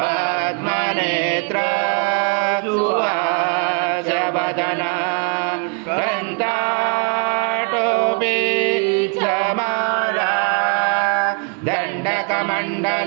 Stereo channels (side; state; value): left; quieter; 38.4 dB